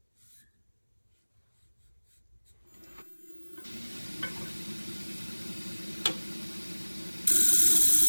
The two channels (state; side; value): inverted; both; correlation -1.00